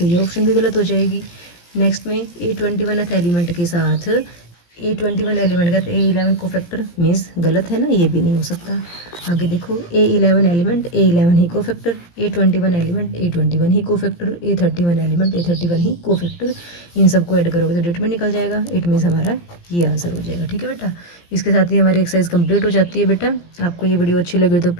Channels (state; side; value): late; right; 17 ms